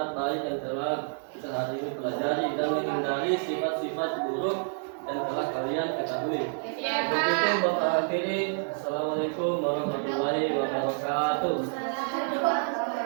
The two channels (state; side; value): silent; left; 59 dB below the other